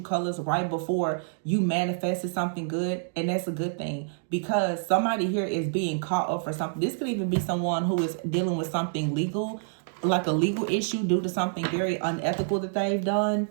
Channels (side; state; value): left; silent; digital silence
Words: colors right before you manifested something good. And that's a good thing because somebody here is being caught up for something. This could even be someone who is dealing with something legal, like a legal issue due to something very unethical that they've done.